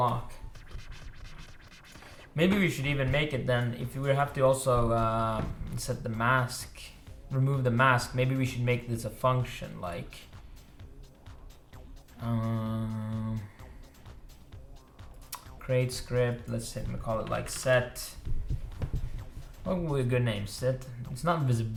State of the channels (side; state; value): both; identical; correlation 1.00